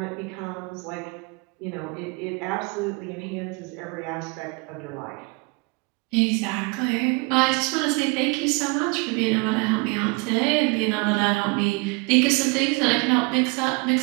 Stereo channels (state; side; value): quieter; left; 29.7 dB